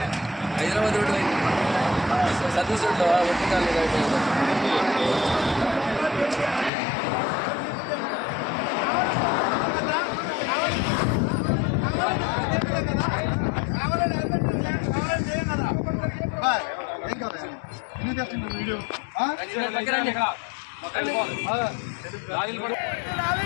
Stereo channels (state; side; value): drops out; right; at 6.7 s